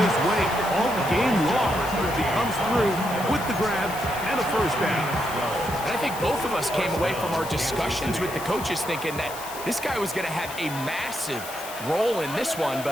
way all game long. He comes through with the grab and a first down. And I think both of us came away from our discussions with the coaches thinking that this guy was going to have a massive role in this one,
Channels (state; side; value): noise; left; hiss, 12 dB below the sound